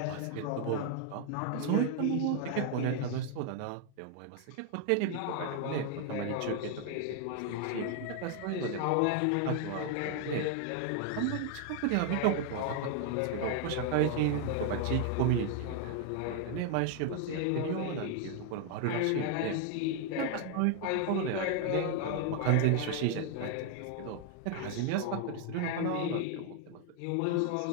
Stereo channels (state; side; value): different; both; correlation 0.00